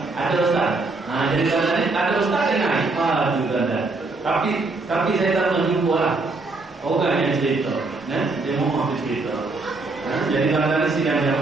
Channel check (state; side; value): quieter; left; 3.5 dB